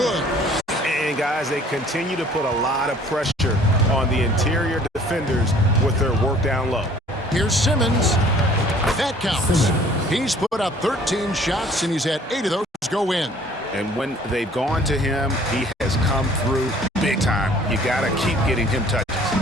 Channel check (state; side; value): normal; both; correlation 0.54